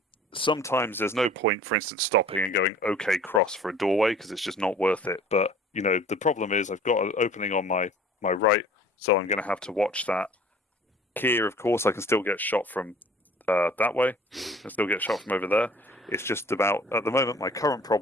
Sometimes there's no point, for instance, stopping and going, okay, cross for a doorway, because it's just not worth it. But, the problem is I've got an opening on my right, so I'm going to have to watch that. Here, of course, I can still get shot from that way. I can still get shot from over there. It's just about, at the moment, my current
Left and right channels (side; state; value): both; normal; correlation 0.49